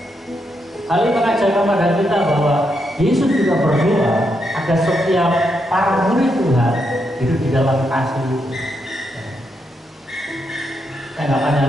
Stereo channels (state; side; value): normal; both; correlation 0.81